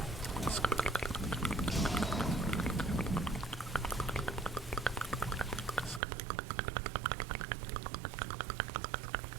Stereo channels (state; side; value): drops out; left; at 6.0 s